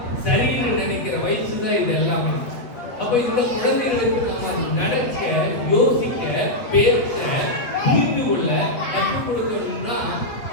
சரின்னு நினைக்கிற வயசு தான் இது எல்லாமே. அப்ப இந்த குழந்தைகளுக்கு நம்ம நடக்க, யோசிக்க, பேச, புரிந்து கொள்ள கற்றுக் கொடுக்கணும்னா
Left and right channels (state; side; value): late; right; 8.4 ms